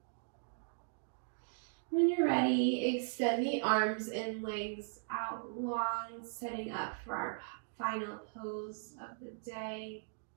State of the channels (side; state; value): left; silent; digital silence